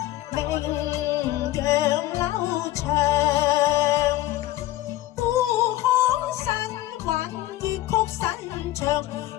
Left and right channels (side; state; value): right; quieter; 15.4 dB